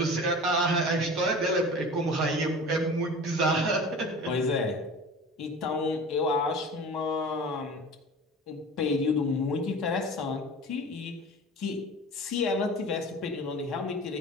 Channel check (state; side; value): normal; both; correlation 0.37